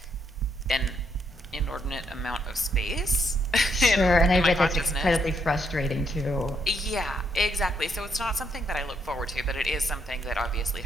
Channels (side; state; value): both; normal; correlation 0.75